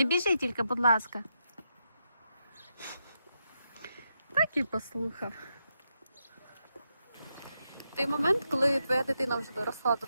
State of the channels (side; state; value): both; inverted; correlation -0.84